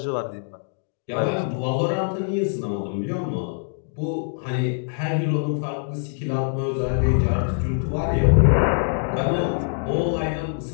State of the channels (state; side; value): silent; right; digital silence